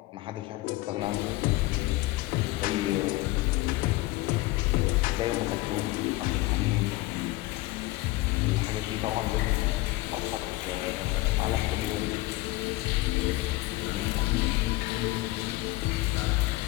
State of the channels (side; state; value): right; quieter; 19.3 dB